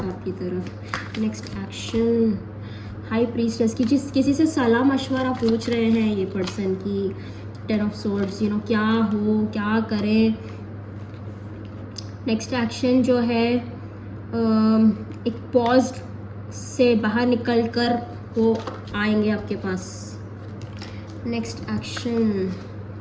आपकी तरफ. नेक्स्ट एक्शन, हाई प्रीस्टेस की किसी से सलाह मशवरा पूछ रहे हैं ये पर्सन की. 10 ऑफ सोर्ड्स, क्या हो, क्या करें. नेक्स्ट एक्शन जो है एक पॉज से बाहर निकल कर वो आएंगे आपके पास। नेक्स्ट एक्शन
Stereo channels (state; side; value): identical; both; correlation 1.00